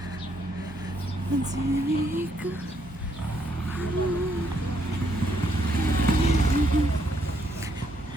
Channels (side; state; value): both; normal; correlation 0.73